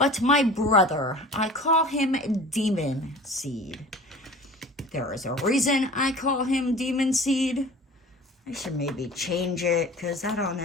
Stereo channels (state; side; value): normal; both; correlation 0.41